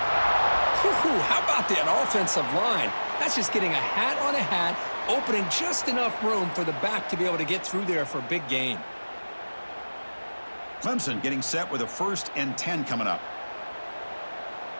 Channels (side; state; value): both; inverted; correlation -1.00